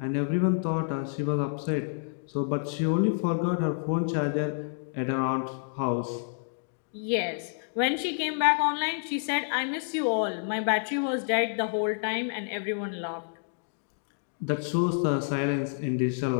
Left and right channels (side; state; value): right; silent; digital silence